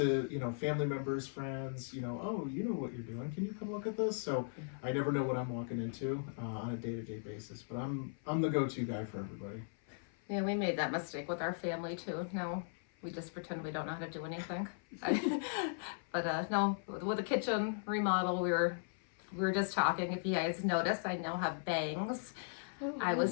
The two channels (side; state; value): right; silent; 53 dB below the other